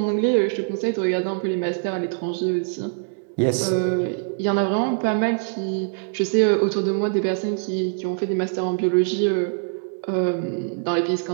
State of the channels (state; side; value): silent; left; digital silence